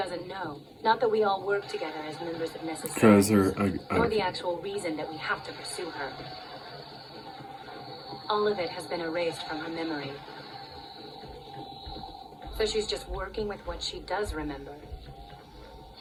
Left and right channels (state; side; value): identical; both; correlation 1.00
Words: know. Not that we all work together as members of Because Necessary. Or the actual reason that we have to pursue her. All of it has been erased from her memory. So she's just working with what she does remember.